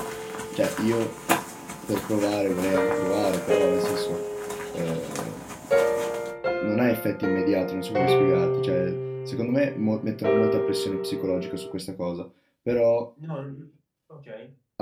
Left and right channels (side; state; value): both; identical; correlation 1.00